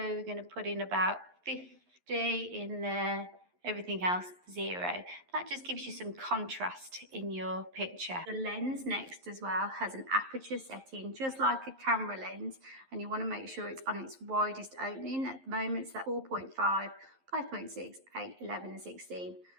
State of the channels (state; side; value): late; left; 11 ms